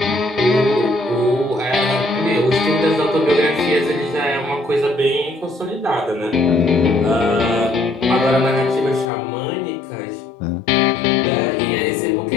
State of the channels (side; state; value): right; drops out; at 9.1 s